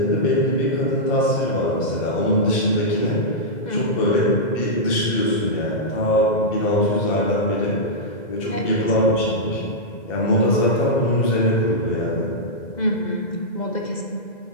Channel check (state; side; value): late; right; 2.0 ms